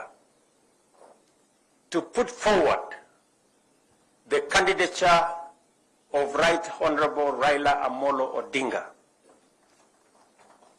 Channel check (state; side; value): identical; both; correlation 1.00